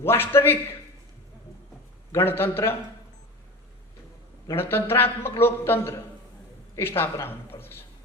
गणतन्त्र, गणतन्त्रात्मक लोकतन्त्र स्थापना हुनुपर्दछ।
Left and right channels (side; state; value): both; normal; correlation 0.32